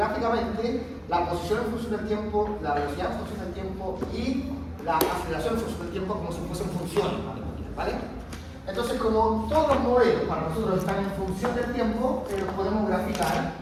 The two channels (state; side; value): identical; both; correlation 1.00